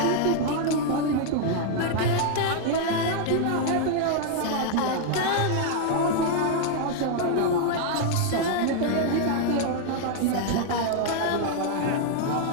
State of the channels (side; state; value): both; different; correlation 0.00